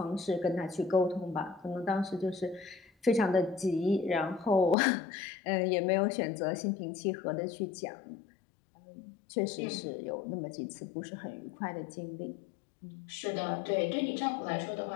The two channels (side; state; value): right; drops out; at 4.8 s